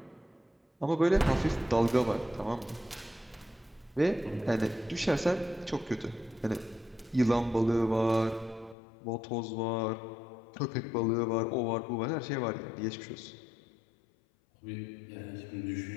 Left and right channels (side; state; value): right; drops out; at 8.8 s